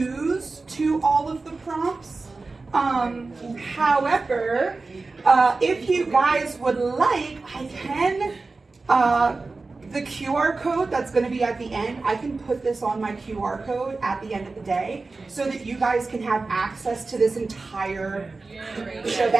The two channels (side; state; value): left; quieter; 3.7 dB